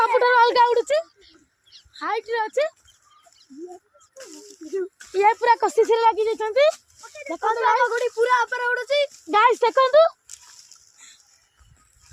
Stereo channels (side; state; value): both; identical; correlation 1.00